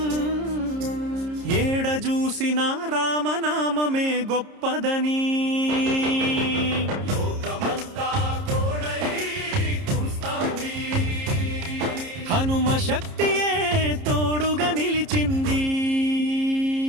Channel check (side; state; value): left; late; 30 ms